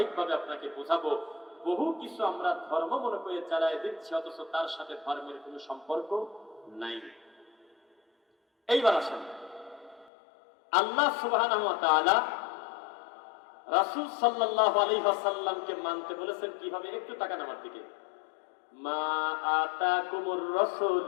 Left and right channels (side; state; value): right; drops out; at 10.1 s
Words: আপনাকে বোঝাবো, বহু কিছু আমরা ধর্ম মনে করে চালায় দিচ্ছি, অথচ তার সাথে ধর্মের কোনো সম্পর্ক নাই। এইবার আসেন, আল্লাহ সুবহানাহু ওয়া তাআলা রাসূল সাল্লাল্লাহু আলাইহি ওয়াসাল্লামকে মানতে বলেছেন কিভাবে? একটু তাকান আমার দিকে। মা আতাকুমুর